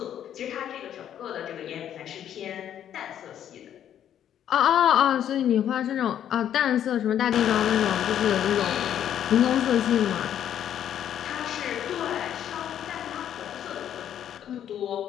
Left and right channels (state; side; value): quieter; right; 10.2 dB